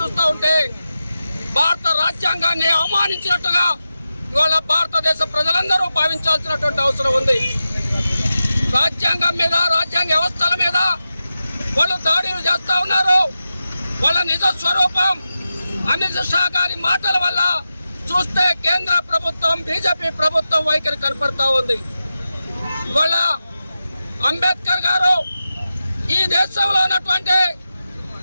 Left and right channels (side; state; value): both; inverted; correlation -0.92